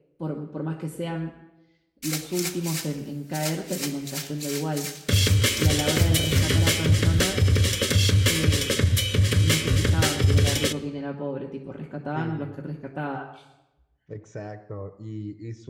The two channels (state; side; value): identical; both; correlation 1.00